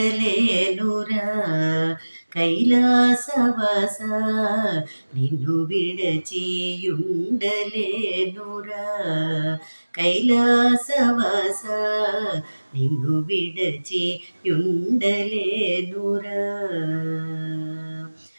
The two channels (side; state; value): both; inverted; correlation -1.00